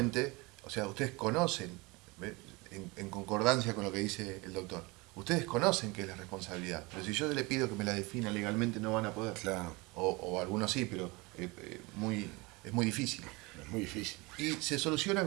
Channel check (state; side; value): quieter; left; 25.0 dB